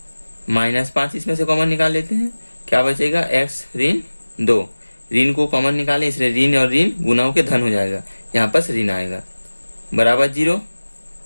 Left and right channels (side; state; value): both; inverted; correlation -1.00